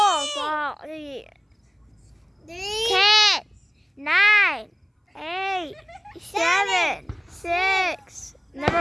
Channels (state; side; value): identical; both; correlation 1.00